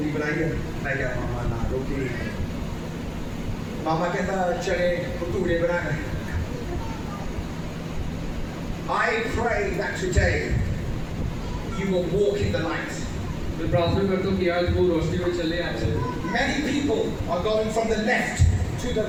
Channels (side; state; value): both; identical; correlation 1.00